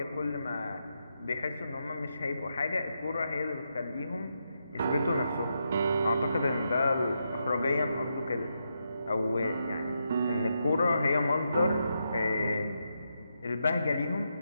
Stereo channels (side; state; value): both; inverted; correlation -0.83